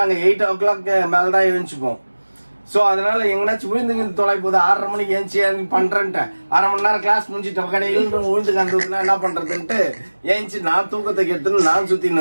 8 o'clock மேலதான் எழுந்துச்சுப்போம். சோ அதனால எங்கனாச்சும் விழுந்து தொலை போகுது 6:30 மணிக்கு ஏஞ்சி பண்றேன்ட்டு 1/2 மணி நேரம் கிளாஸ் முடிஞ்சிட்ட கடையில் விழுந்து கந்ததுன்னா என்ன பண்றதுன்ட்டு ஏஞ்சி நான் தூக்கத்தை கெடுத்துன்னு நான் சுத்தி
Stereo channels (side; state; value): both; inverted; correlation -1.00